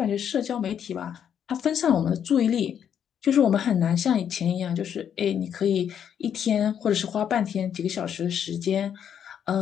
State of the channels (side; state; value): right; quieter; 8.7 dB